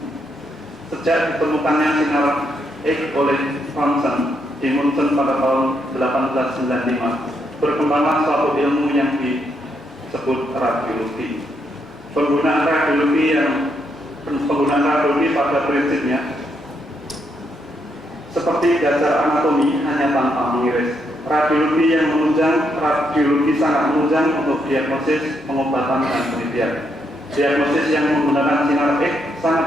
Sejak ditemukannya sinar X oleh Thomson di Munchen pada tahun 1895, berkembanglah suatu ilmu yang disebut radiologi. Penggunaan radiologi pada prinsipnya seperti dasar anatomi hanya tanpa mengiris. Radiologi yang menunjang, radiologi sangat menunjang untuk diagnosis, pengobatan, dan penelitian. Diagnosis yang menggunakan sinar X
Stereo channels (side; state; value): both; normal; correlation 0.78